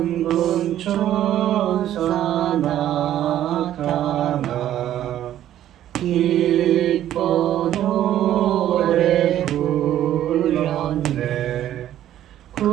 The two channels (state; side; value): quieter; left; 12.0 dB